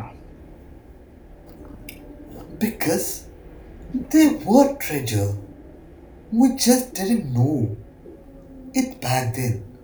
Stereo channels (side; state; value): both; identical; correlation 1.00